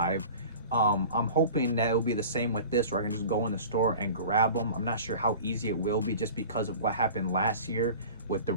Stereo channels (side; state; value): both; inverted; correlation -0.39